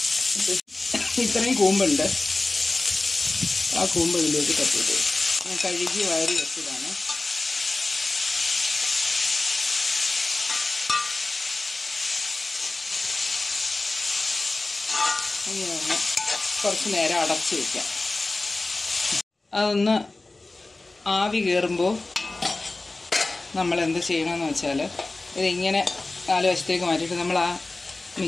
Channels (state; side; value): quieter; right; 3.1 dB